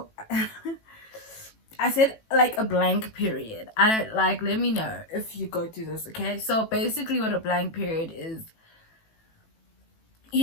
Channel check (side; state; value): right; late; 18 ms